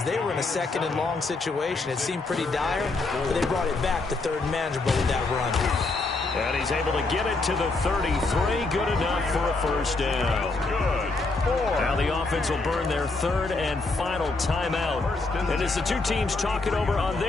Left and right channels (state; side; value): quieter; right; 3.5 dB